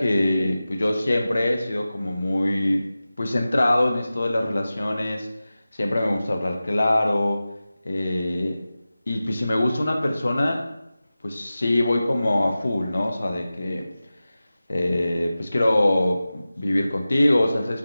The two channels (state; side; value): inverted; both; correlation -0.95